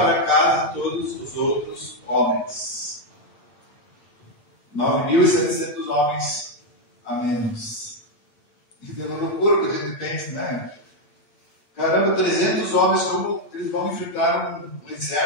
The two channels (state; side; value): late; right; 8.7 ms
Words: casa todos os outros homens. 9.700 homens a menos. Isso é uma loucura que a gente pensa, né? Caramba, 300 homens, como eles vão enfrentar um